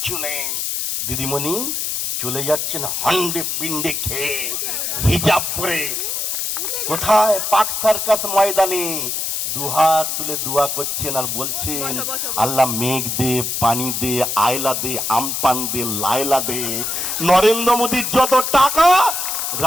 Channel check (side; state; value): left; noise; hiss, 1 dB below the sound